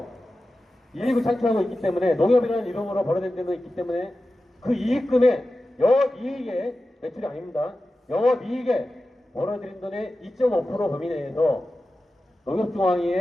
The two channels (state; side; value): normal; both; correlation 0.93